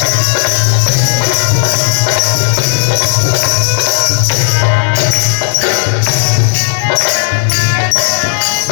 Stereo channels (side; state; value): right; silent; digital silence